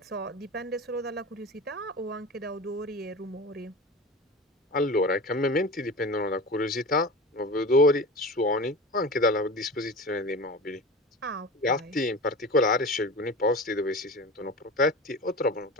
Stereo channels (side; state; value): both; normal; correlation 0.32